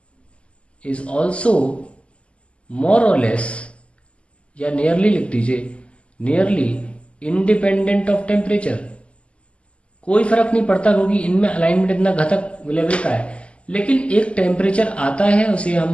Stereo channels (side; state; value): right; late; 0.057 ms